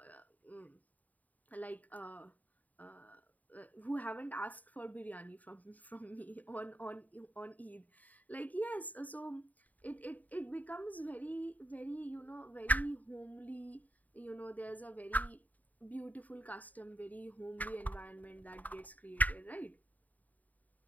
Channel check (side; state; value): right; late; 0.076 ms